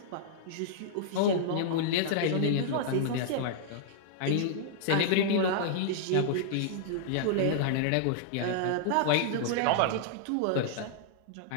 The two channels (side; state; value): both; different; correlation -0.01